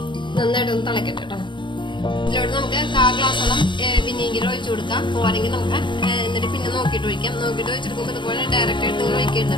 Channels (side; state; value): right; late; 0.23 ms